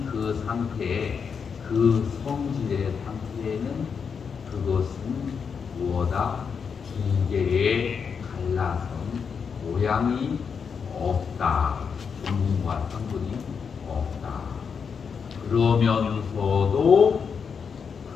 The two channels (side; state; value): right; quieter; 6.3 dB